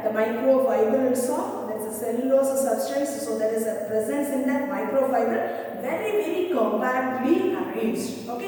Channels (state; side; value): identical; both; correlation 1.00